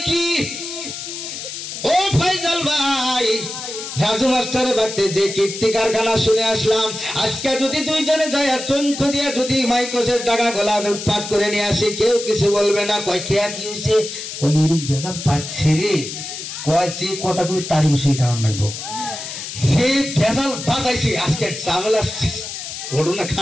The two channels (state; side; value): noise; left; hiss, 8 dB below the sound